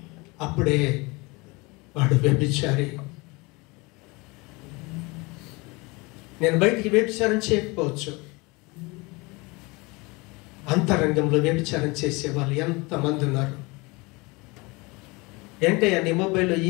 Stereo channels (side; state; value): right; quieter; 25.7 dB